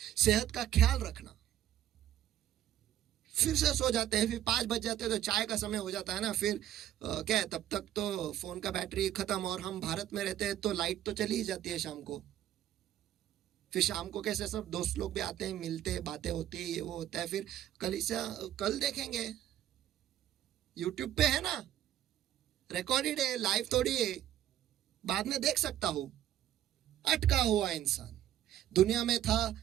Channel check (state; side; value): quieter; left; 12.0 dB